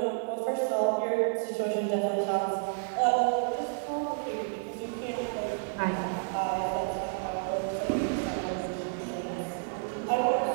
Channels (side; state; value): left; silent; 58 dB below the other